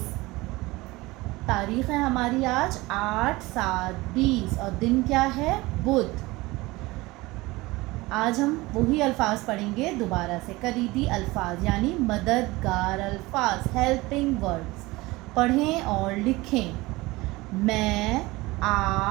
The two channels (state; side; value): quieter; left; 21.1 dB